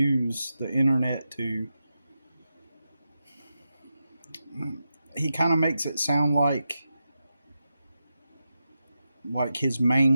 the internet to. He kind of makes it sound like his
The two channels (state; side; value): inverted; both; correlation -0.89